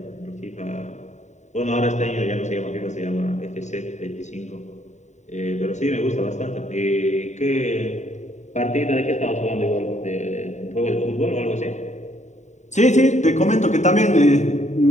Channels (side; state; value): right; late; 0.34 ms